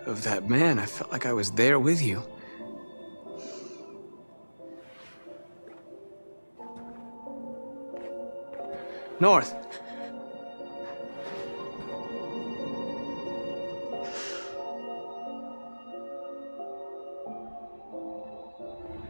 of that man. I felt like I was there with you. North.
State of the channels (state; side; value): inverted; both; correlation -1.00